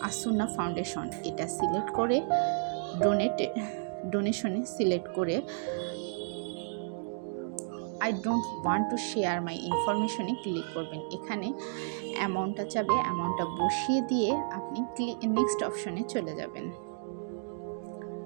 আসুন্না ফাউন্ডেশন, এটা সিলেক্ট করে ডোনেশনে সিলেক্ট করে I don't want to share my ইনফরমেশনে ক্লিক করবেন। এখানে অ্যামাউন্টটা চাবে, অ্যামাউন্টটা বসিয়ে দিয়ে আপনি নেক্সট অপশনে চলে যাবেন।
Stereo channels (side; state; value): left; silent; digital silence